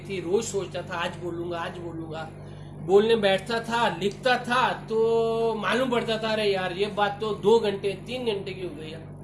रोज सोचता था आज बोलूंगा। बोलने बैठता था, लिखता था तो मालूम पड़ता था अरे यार ये बात तो 2 घंटे 3 घंटे की हो गई है।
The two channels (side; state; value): both; identical; correlation 1.00